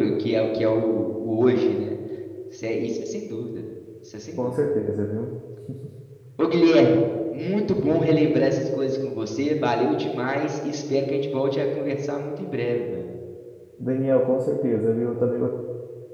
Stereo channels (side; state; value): both; identical; correlation 1.00